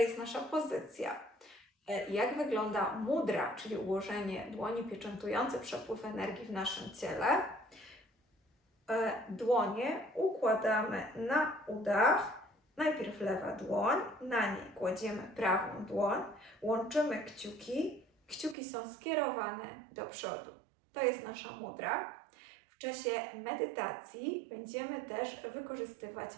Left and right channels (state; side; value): drops out; left; at 18.6 s